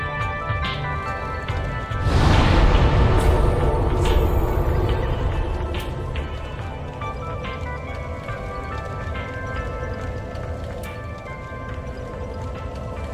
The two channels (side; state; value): both; identical; correlation 1.00